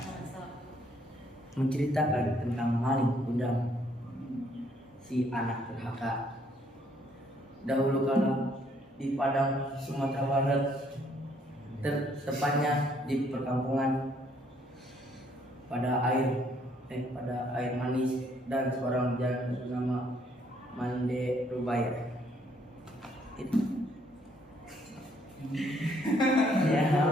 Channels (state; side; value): normal; both; correlation 0.67